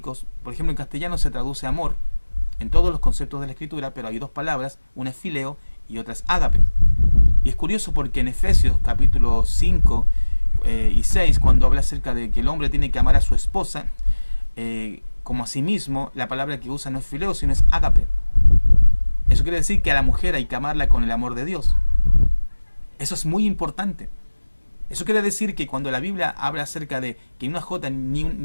por ejemplo en castellano se traduce amor, en todos los conceptos de la Escritura, pero hay dos palabras, una es fileo y otra es ágape. Y es curioso porque en Efesios capítulo 5 y 6, cuando habla acerca de que el hombre tiene que amar a su esposa, como a sí mismo, la palabra que usa no es fileo, sino es ágape. Eso quiere decir que a la mujer hay que amarla con el amor de Dios. Eso es muy importante. Eso quiere decir que cuando la Biblia habla acerca de que una jota ni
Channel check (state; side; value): inverted; both; correlation -1.00